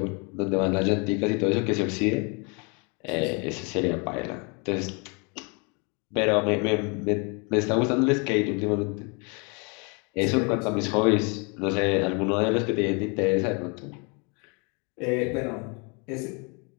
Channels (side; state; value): right; quieter; 32.8 dB